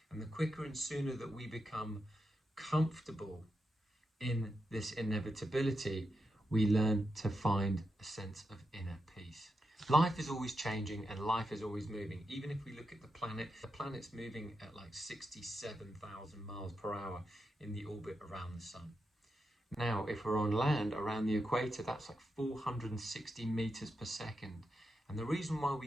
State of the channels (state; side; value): normal; both; correlation 0.86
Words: And the quicker and sooner that we become comfortable in this inevitability, we learn to find a sense of inner peace. Life is always changing and life is always moving. Even if we look at the planet's moving at like 67,000 miles per hour in the orbit around the sun. Now, if we're on land around the equator, that's like 460 meters per second. And the reason why